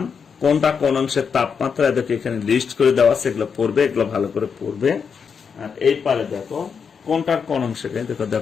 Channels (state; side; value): quieter; right; 6.3 dB